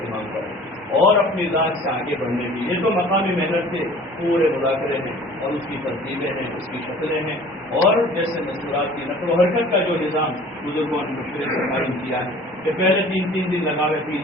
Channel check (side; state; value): both; normal; correlation 0.47